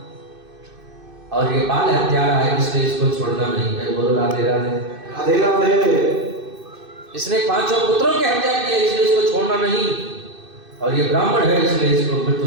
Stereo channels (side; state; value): left; late; 2.6 ms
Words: और ये बाल हत्यारा है इसलिए इसको छोड़ना नहीं है। बोलो राधे राधे। राधे राधे। इसने 5 पुत्रों की हत्या की है इसलिए इसको छोड़ना नहीं, और ये ब्राह्मण है इसलिए इसको मृत्यु